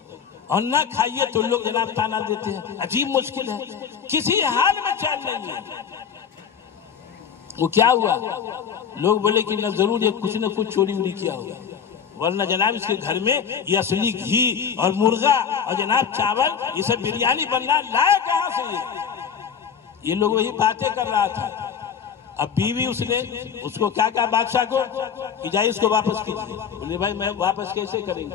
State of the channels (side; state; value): right; quieter; 7.4 dB